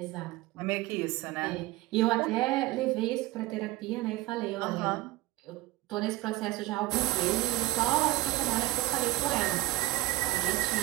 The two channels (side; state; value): left; quieter; 18.3 dB